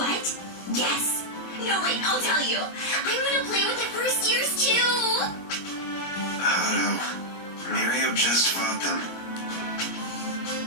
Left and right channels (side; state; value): right; late; 21 ms